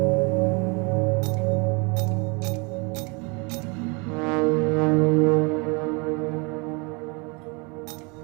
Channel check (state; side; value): quieter; left; 30.6 dB